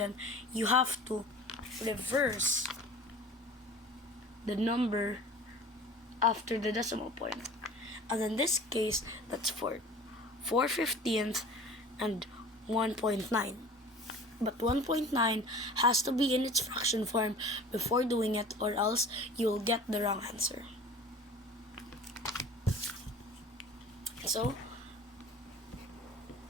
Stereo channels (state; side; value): normal; both; correlation 0.41